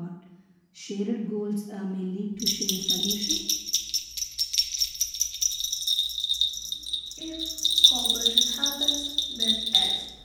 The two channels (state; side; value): identical; both; correlation 1.00